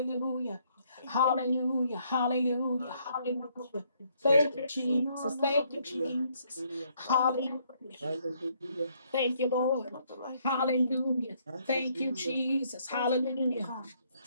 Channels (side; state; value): both; inverted; correlation -0.69